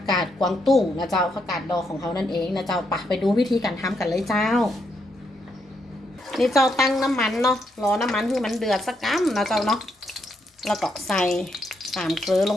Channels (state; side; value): normal; both; correlation 0.78